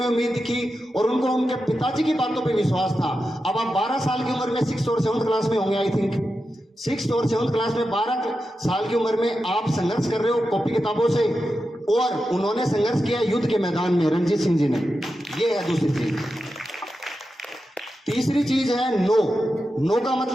उम्मीद की और उनको उनके पिताजी की बातों पे विश्वास था। अब आप 12 साल की उम्र में 6th और 7th क्लास में होंगे, आई थिंक 6th और 7th क्लास में 12 साल की उम्र में आप संघर्ष कर रहे हो कॉपी किताबों से, और उन्होंने संघर्ष किया युद्ध के मैदान में, रणजीत सिंह जी ने। ये है दूसरी चीज। तीसरी चीज है नो का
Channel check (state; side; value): normal; both; correlation 0.90